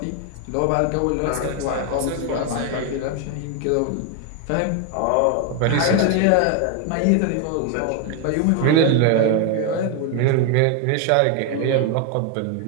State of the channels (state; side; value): different; both; correlation 0.01